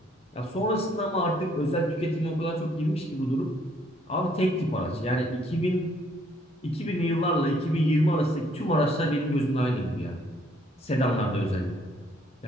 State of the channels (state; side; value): normal; both; correlation 0.66